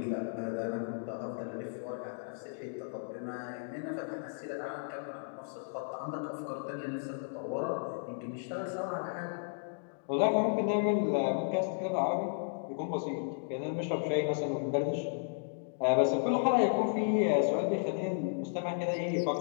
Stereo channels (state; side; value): silent; right; digital silence